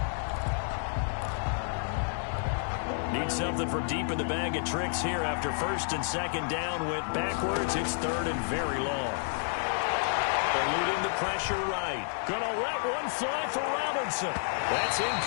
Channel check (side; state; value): right; silent; digital silence